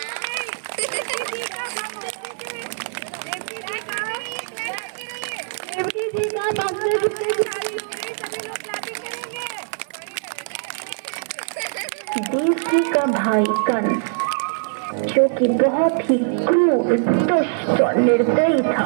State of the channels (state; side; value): silent; left; digital silence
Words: देवकी का भाई कंस, जो कि बहुत ही क्रूर, दुष्ट और निर्दयी